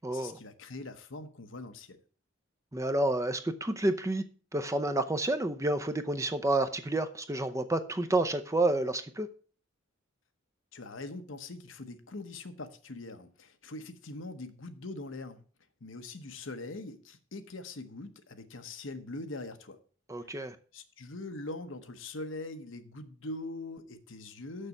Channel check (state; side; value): normal; both; correlation 0.62